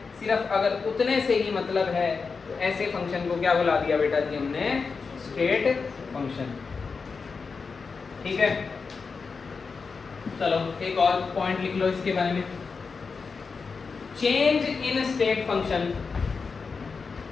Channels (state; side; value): quieter; right; 4.9 dB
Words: सिर्फ अगर उतने से ही मतलब है। तो ऐसे फंक्शन को क्या बुला दिया बेटा जी हमने? State function. ठीक है, चलो एक और पॉइंट लिख लो इसके बारे में। चेंज इन स्टेट फंक्शन